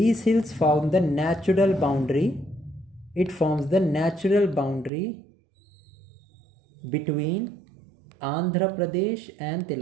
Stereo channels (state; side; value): drops out; left; at 4.9 s